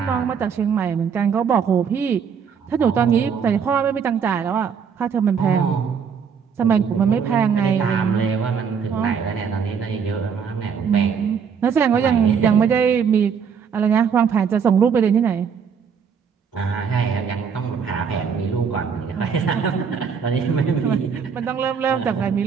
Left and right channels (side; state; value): left; quieter; 6.7 dB